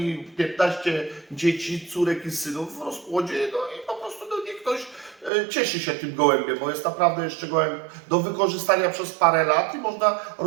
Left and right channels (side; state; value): left; drops out; at 5.3 s